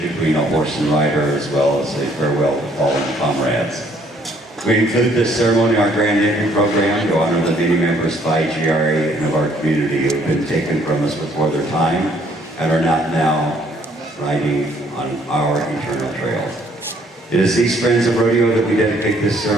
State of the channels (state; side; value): normal; both; correlation 0.64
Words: between a horse and rider, as well as a farewell to fallen comrades. We include this ceremony in our Grand Entry program to honor the many members of IGRA and of our community who have been taken from us before their time and are not now riding on our eternal trail. It is these friends of rodeo that we dedicate this